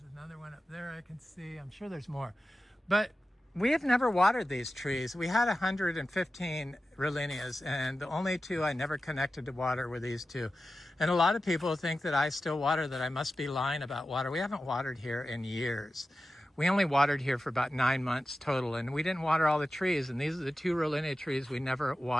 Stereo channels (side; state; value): both; normal; correlation 0.93